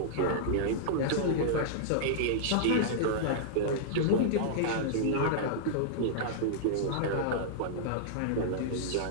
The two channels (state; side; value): different; both; correlation -0.02